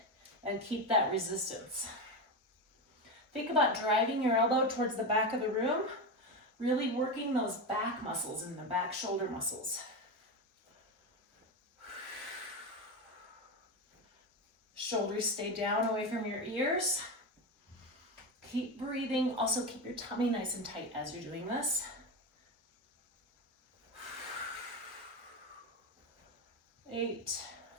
and keep that resistance. Think about driving your elbow towards the back of the room, really working those back muscles and the back shoulder muscles. Shoulders stay down away from your ears. Keep breathing. Also keep your tummy nice and tight as you're doing this. 8,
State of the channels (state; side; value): normal; both; correlation 0.16